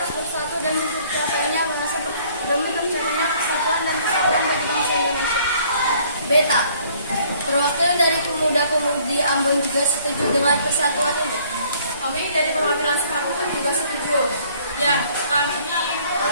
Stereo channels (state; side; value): inverted; both; correlation -0.59